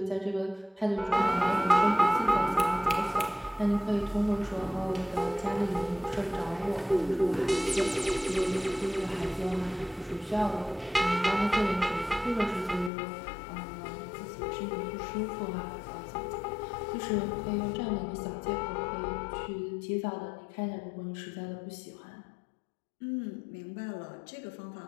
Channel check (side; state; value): right; drops out; at 12.9 s